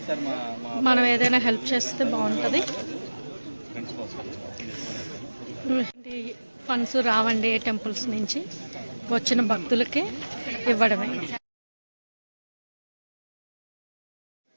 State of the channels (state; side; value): inverted; both; correlation -1.00